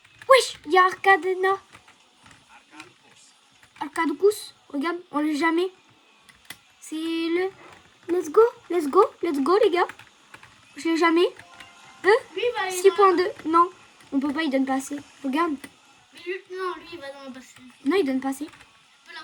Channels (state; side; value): identical; both; correlation 1.00